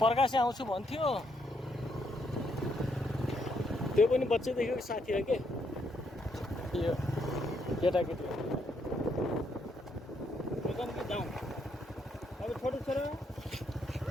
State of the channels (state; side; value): normal; both; correlation 0.75